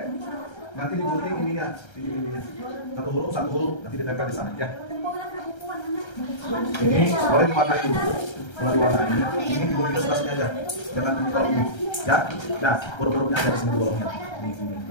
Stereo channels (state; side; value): late; right; 1.3 ms